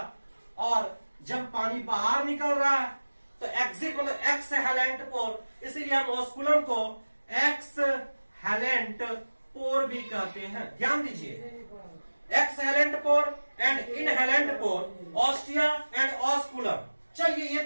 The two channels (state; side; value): inverted; both; correlation -1.00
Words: और जब पानी बाहर निकल रहा है तो एग्जिट मतलब एक्सहेलेंट पोर, इसीलिए हम ऑस्कुलम को एक्सहेलेंट पोर भी कहते हैं। ध्यान दीजिए, exhalant pore and inhalant pore, ostia and osculum. चलिए, ये